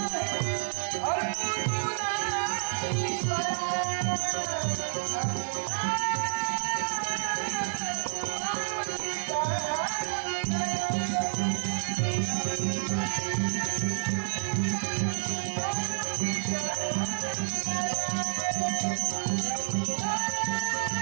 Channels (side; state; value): left; silent; 58 dB below the other